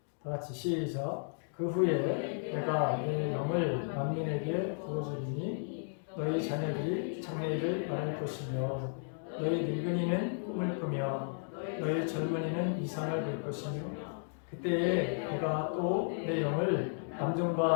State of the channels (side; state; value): right; silent; digital silence